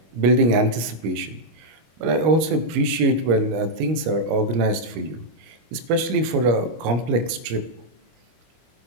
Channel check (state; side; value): late; left; 25 ms